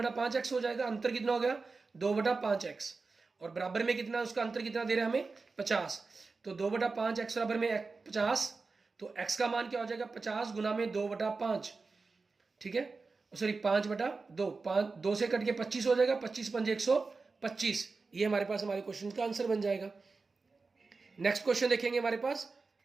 हो जाएगा, अंतर कितना हो गया? 2/5x। और बराबर में कितना, उसका अंतर कितना दे रहा है हमें? 50। तो 2/5x बराबर में 50, तो x का मान क्या हो जाएगा? 50 गुना में 2/5, ठीक है, सॉरी 5/2, 2 से कट के 25 हो जाएगा, 25 पंजे 125, ये हमारे पास हमारे क्वेश्चन का आंसर बन जाएगा। नेक्स्ट क्वेश्चन देखेंगे हमारे पास,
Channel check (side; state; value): left; quieter; 4.1 dB